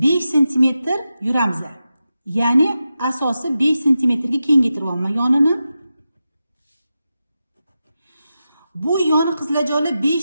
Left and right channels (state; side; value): inverted; both; correlation -0.91